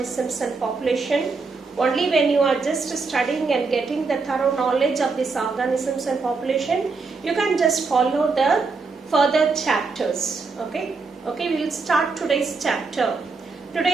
and population. Only when you are just studying and getting the thorough knowledge of these organisms and population, you can just follow the further chapters. Okay, we will start today's chapter.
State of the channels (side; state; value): left; quieter; 4.3 dB